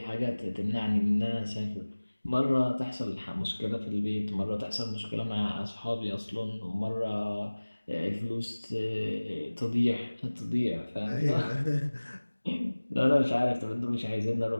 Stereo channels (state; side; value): inverted; both; correlation -1.00